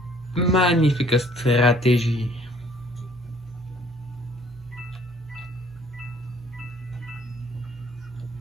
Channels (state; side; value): normal; both; correlation 0.59